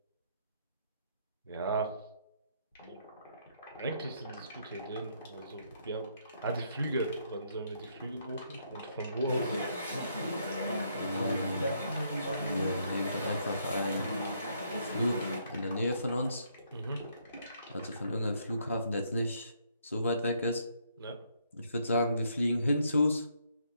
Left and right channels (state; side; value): inverted; both; correlation -0.72